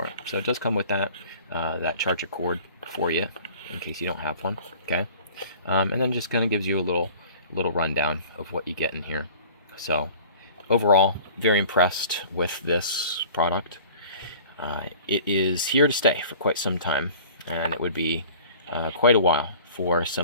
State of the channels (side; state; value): both; inverted; correlation -0.47